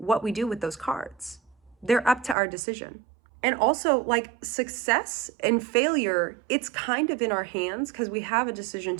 we do with those cards. They're up to our decision. And also, like, success and failure, it's kind of in our hands because we have a decision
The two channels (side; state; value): left; drops out; at 2.4 s